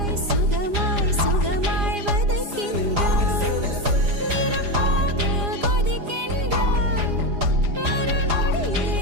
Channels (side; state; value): left; late; 4.9 ms